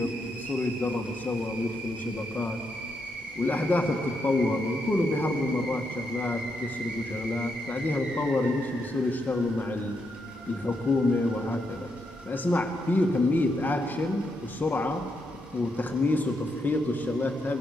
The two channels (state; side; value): normal; both; correlation 0.80